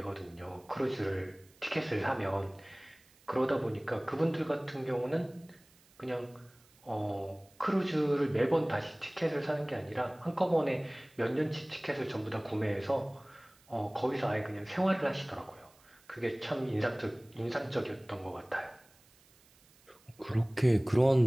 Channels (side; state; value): right; noise; hiss, 29 dB below the sound